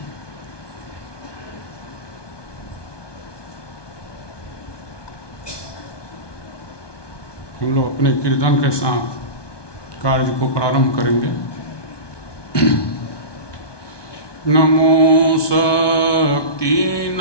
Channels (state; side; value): late; right; 1.2 ms